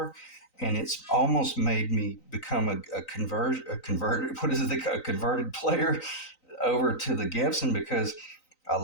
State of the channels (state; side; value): late; right; 3.9 ms